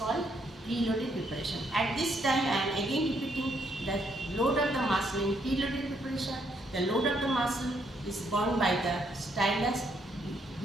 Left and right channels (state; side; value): normal; both; correlation 0.73